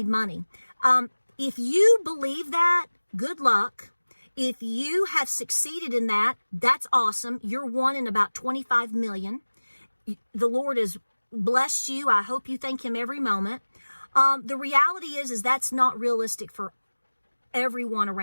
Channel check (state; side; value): inverted; both; correlation -1.00